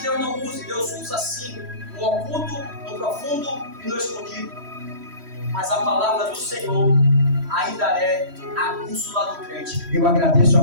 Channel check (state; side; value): late; left; 3.1 ms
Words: Deus não use, Deus usa sim, no oculto, no profundo e no escondido, mas a palavra do Senhor ainda é a bússola do crente. Eu agradeço a